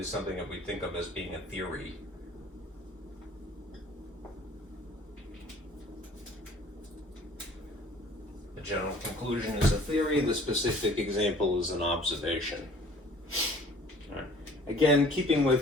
something that we think of as being a theory. The general conclusion is a theory, the specific example is an observation. Right. Again, keeping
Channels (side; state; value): both; normal; correlation 0.52